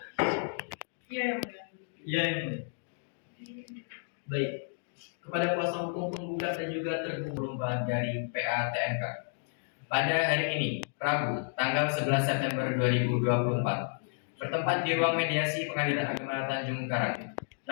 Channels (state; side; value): silent; right; digital silence